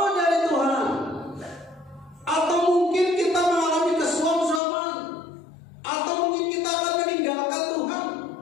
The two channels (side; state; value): right; drops out; at 4.6 s